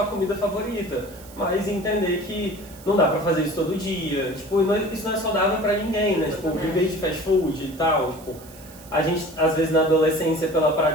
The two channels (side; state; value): right; noise; hiss, 21 dB below the sound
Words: comida favorita, mas entender que não dá pra fazer isso todo dia, tipo, isso não é saudável pra ninguém, né? Tipo, viver de fast food e tal, tipo, a gente, às vezes na adolescência, pela